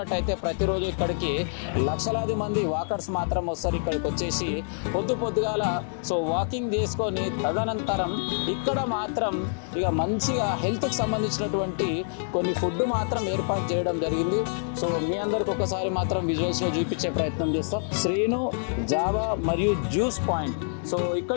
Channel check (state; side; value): silent; right; digital silence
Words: ప్రతిరోజు ఇక్కడికి లక్షలాది మంది వాకర్స్ మాత్రం వస్తారు. ఇక్కడికి వచ్చేసి పొద్దుగాల సో వాకింగ్ చేసుకొని తదనంతరం ఇక్కడ మాత్రం ఇక మంచిగా హెల్త్కి సంబంధించినటువంటి కొన్ని ఫుడ్ మాత్రం ఏర్పాటు చేయడం జరిగింది. సో మీ అందరికి ఒకసారి మాత్రం విజువల్స్లో చూపించే ప్రయత్నం చేస్తాం. శ్రీను జావా మరియు జ్యూస్ పాయింట్. సో